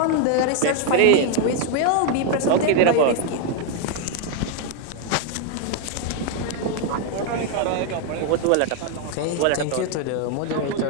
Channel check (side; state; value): both; different; correlation 0.00